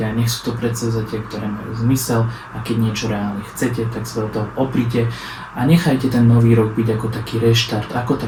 nech sú to predsavzatia, ktoré majú zmysel a keď niečo reálne chcete, tak sa do toho oprite a nechajte ten nový rok byť ako taký reštart, ako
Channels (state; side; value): identical; both; correlation 1.00